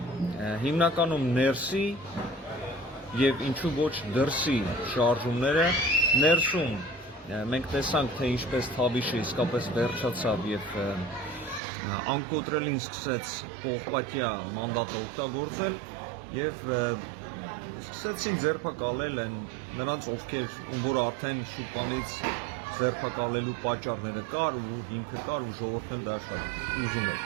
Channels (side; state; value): left; drops out; at 11.6 s